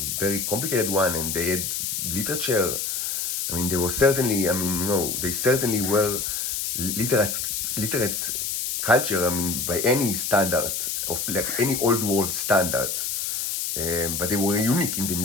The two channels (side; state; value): left; noise; hiss, 2 dB below the sound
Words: very complicated one, and they had literature, I mean, they were certainly, I mean, you know, they certainly were literate culture, I mean, by any standard, of like any old world standard. But they were unique in the